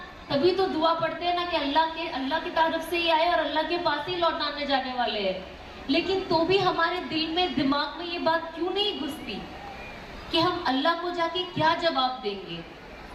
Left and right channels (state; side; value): identical; both; correlation 1.00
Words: تبھی تو دعا پڑھتے ہیں نا کہ اللہ کی طرف سے ہی آئے اور اللہ کے پاس ہی لوٹانے جانے والے ہیں. لیکن تو بھی ہمارے دل میں دماغ میں یہ بات کیوں نہیں گھستی کہ ہم اللہ کو جا کے کیا جواب دیں گے.